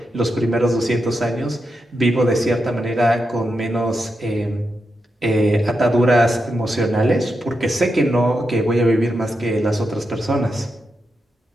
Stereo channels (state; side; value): normal; both; correlation 0.86